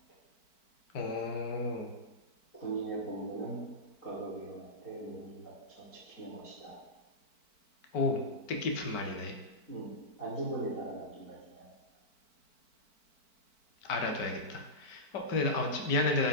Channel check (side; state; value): right; late; 4.5 ms